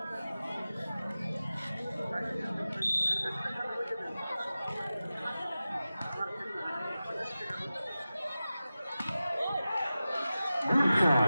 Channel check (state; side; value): inverted; both; correlation -0.95